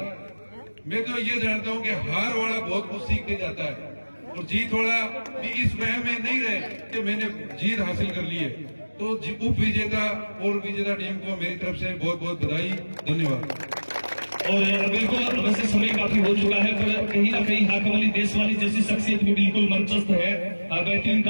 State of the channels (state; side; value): inverted; both; correlation -1.00